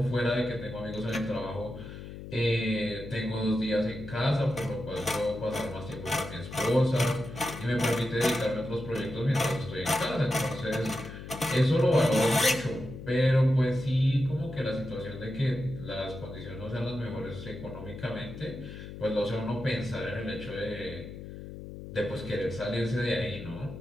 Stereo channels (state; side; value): noise; left; hum, 11 dB below the sound